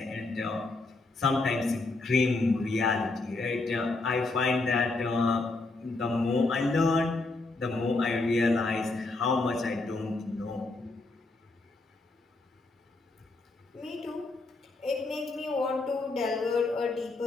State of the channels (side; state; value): right; quieter; 3.3 dB